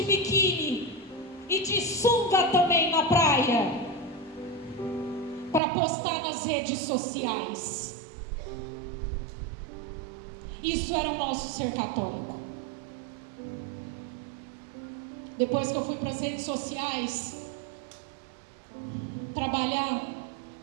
biquíni e de sunga também na praia, para postar nas redes sociais. Isso era o nosso ser católico. Depois que eu fui para as redes sociais trabalhar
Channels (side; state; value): left; drops out; at 5.6 s